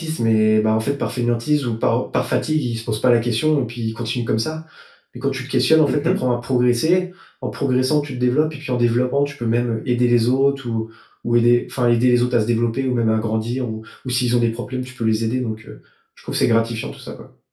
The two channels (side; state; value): both; identical; correlation 1.00